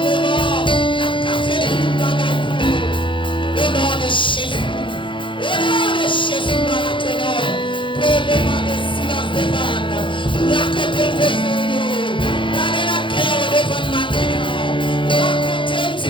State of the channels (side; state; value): right; late; 0.24 ms